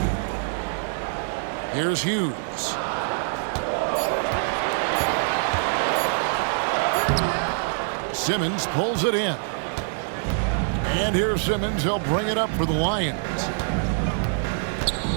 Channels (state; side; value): silent; left; digital silence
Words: Here's Hughes. Simmons pulls it in. And here's Simmons. He'll bring it up for the Lions.